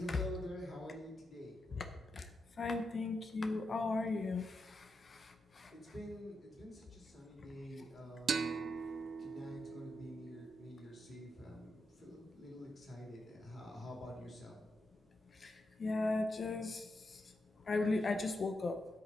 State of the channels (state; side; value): normal; both; correlation 0.85